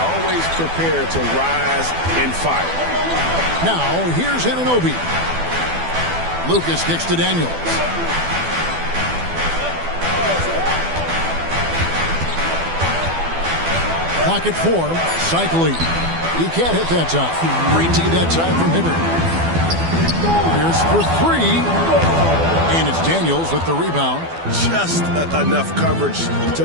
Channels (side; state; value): left; late; 12 ms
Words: prepared to rise and fire. Now, here's Anunoby. Lucas kicks to Daniels. Clock at 4. Cycling. He can't hit that time. Great team that time from Hibbert. Here's for 3. And it's Daniels with the rebound. Just enough coverage to